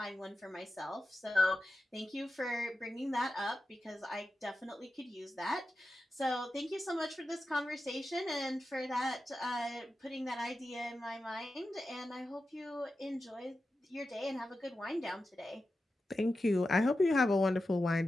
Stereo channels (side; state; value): both; normal; correlation 0.91